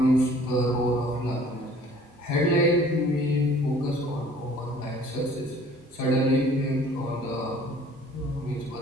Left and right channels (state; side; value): normal; both; correlation 0.53